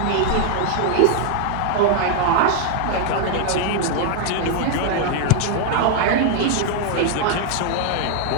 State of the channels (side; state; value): both; different; correlation 0.00